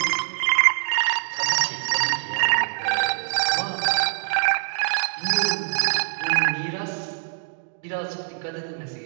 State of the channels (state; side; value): silent; left; digital silence